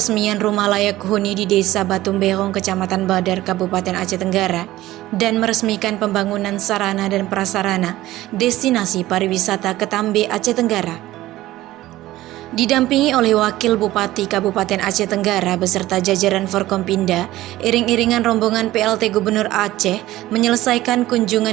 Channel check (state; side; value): quieter; left; 16.0 dB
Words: rumah layak huni di Desa Batu Berong, Kecamatan Badar, Kabupaten Aceh Tenggara, dan meresmikan pembangunan sarana dan prasarana destinasi pariwisata Ketambe, Aceh Tenggara. Didampingi oleh Wakil Bupati Kabupaten Aceh Tenggara beserta jajaran Forkompinda, iring-iringan rombongan PLT Gubernur Aceh menyelesaikan